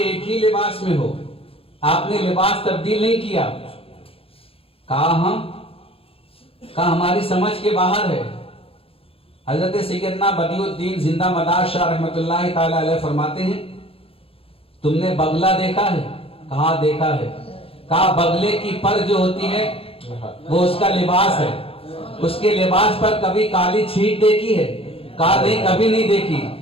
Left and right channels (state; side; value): late; right; 0.27 ms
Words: ہی لباس میں ہو، آپ نے لباس تبدیل نہیں کیا. کہا ہماری سمجھ کے باہر ہے. حضرت سیدنا بدیع الدین زندہ مدار شاہ رحمۃ اللہ تعالی علیہ فرماتے ہیں تم نے بغلہ دیکھا ہے؟ کہا دیکھا ہے. کہا بغلے کی پر جو ہوتی ہے وہ اس کا لباس ہے، اس کے لباس پر کبھی کالی چھیٹ دیکھی ہے؟ کہا نہیں کبھی نہیں دیکھی.